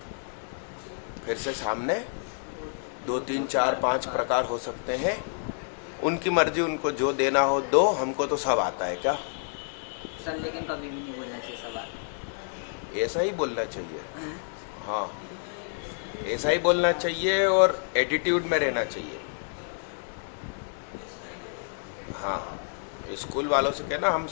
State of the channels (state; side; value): silent; right; 59 dB below the other